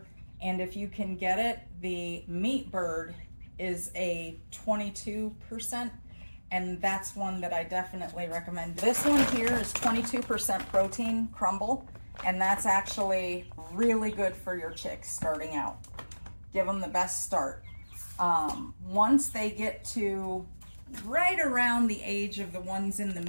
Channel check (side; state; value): both; inverted; correlation -1.00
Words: and if you can get it, the meat bird is a 22%, and that's one that I definitely recommend. This one here is 22% protein crumble, and that's actually really good for your chicks starting out. Give them the best start. Once they get to right around the age of the ones in the